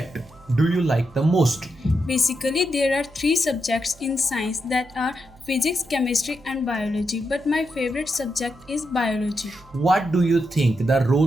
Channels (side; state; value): right; noise; hum, 25 dB below the sound